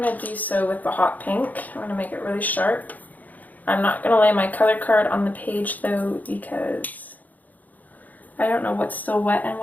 going to do so with the hot pink. I'm going to make it really sharp. I'm not going to lay my color card on the page though, because I don't know what's still wet and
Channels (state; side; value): late; right; 0.080 ms